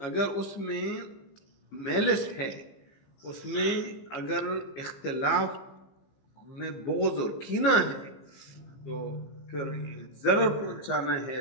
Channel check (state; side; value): late; right; 15 ms